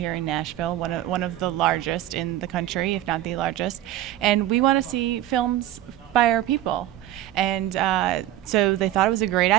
in Nashville, one of the largest in the country, if not the largest, and we want to see films by our people." And so they thought it was a great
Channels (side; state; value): left; quieter; 13.5 dB